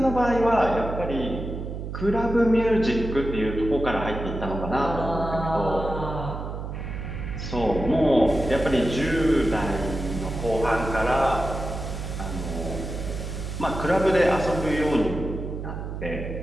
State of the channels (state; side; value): noise; right; hum, 6 dB below the sound